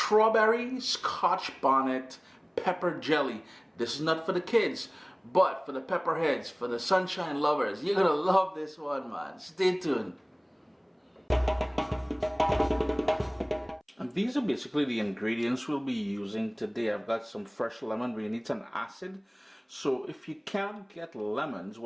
Scotch Bonnet pepper jelly. This is not for the kids, but for the pepperheads, for the sunshine lovers. You're gonna love this one, man. Stay tuned. And these are basically the ingredients we'll be using today. I've got some fresh lemon. We need some acid. So if you can't get lemons,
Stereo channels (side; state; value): both; identical; correlation 1.00